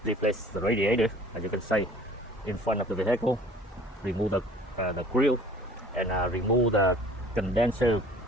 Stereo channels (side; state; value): both; normal; correlation 0.49